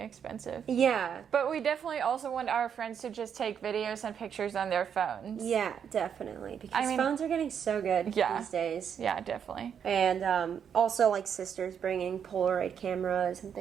Yeah. But we definitely also want our friends to just take videos and pictures on their phones. Yeah, definitely. Because phones are getting so good these days. Yeah, definitely. And also like sisters bringing Polaroid cameras and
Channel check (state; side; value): quieter; left; 7.9 dB